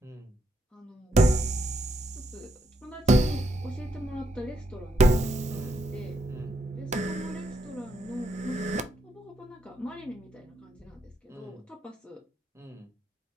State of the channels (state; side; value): normal; both; correlation 0.78